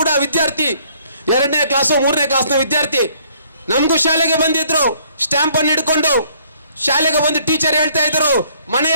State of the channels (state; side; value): inverted; both; correlation -0.63